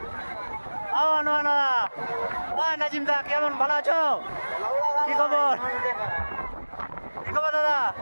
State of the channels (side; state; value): both; inverted; correlation -1.00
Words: ও না নাজিম দা, কেমন? ভালো আছো? কি খবর? কি খবর দাদা?